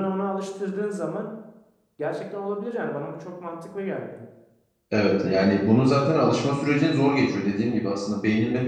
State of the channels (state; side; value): identical; both; correlation 1.00